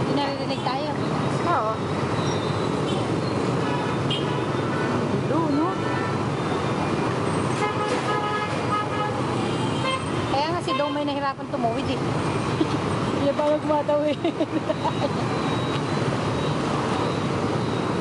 naririnig tayo. Oo. Gulo, no? Kaya nga si Dong may nahirapan tumuwid eh. Hindi pa magmatawid.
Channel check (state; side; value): identical; both; correlation 1.00